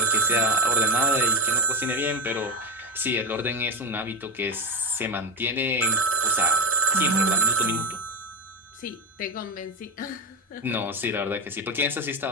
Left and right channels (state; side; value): normal; both; correlation 0.13